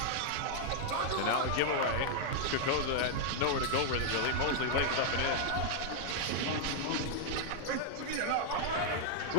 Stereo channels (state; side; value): different; both; correlation -0.01